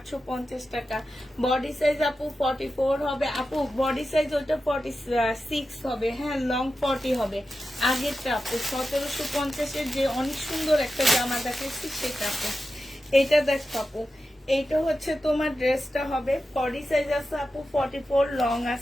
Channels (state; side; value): normal; both; correlation 0.91